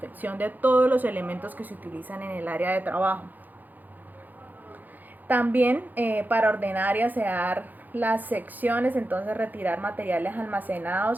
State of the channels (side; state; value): left; late; 0.084 ms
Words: de todos los elementos que se utilizan en el área de trabajo. También para ordenar y asear las secciones, entonces retirar materiales